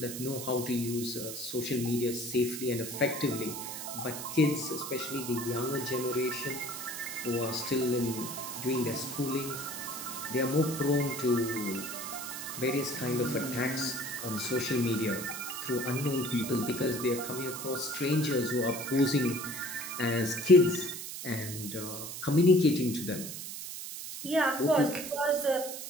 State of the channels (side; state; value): right; noise; hiss, 8 dB below the sound